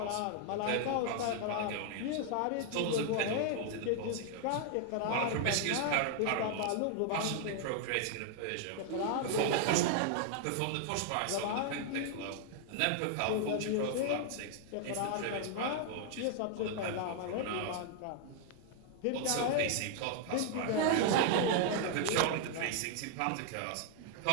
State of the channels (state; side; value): different; both; correlation 0.00